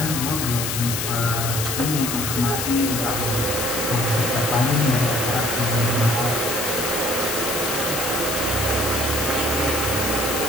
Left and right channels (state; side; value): noise; left; hiss, 2 dB below the sound